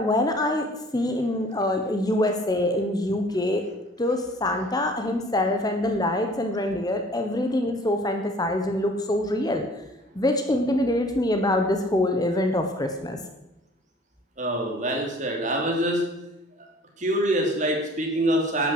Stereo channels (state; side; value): normal; both; correlation 0.51